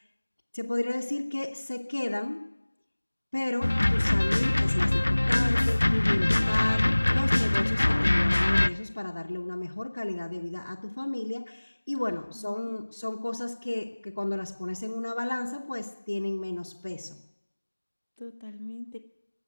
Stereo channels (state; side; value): inverted; both; correlation -1.00